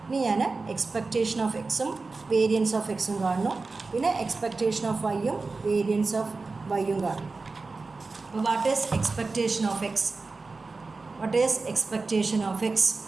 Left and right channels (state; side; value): quieter; left; 3.9 dB